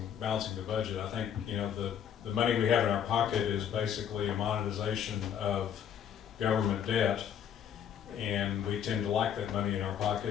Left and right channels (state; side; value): quieter; right; 8.8 dB